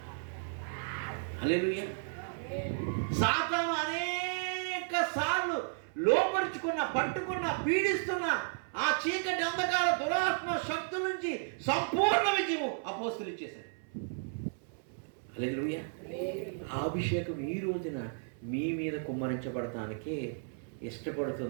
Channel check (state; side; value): silent; left; 55 dB below the other